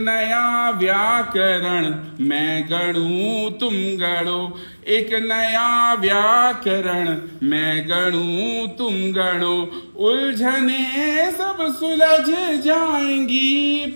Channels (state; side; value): inverted; both; correlation -1.00